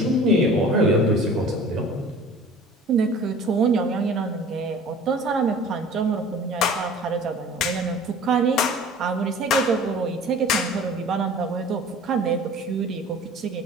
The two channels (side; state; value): both; normal; correlation 0.45